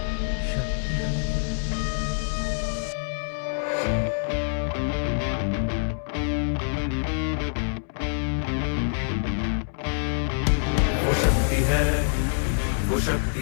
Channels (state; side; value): silent; right; 61 dB below the other